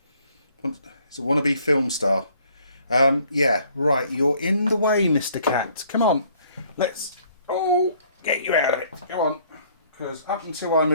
It's a wannabe film star. Yeah, right, you're in the way, Mr. Cat. Come on, let's, get you out of it. Go on. Because up until I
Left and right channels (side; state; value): both; inverted; correlation -0.62